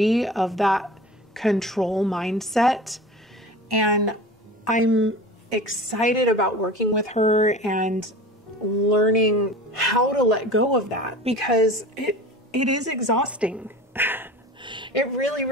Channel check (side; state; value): both; normal; correlation 0.36